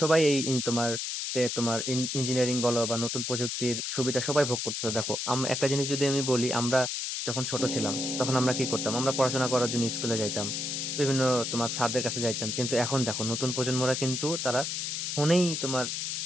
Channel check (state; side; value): noise; left; hiss, 2 dB below the sound